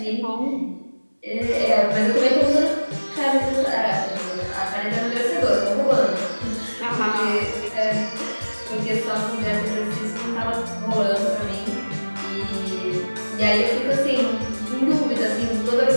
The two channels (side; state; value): both; inverted; correlation -1.00